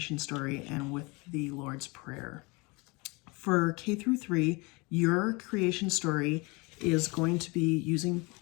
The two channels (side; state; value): right; quieter; 26.8 dB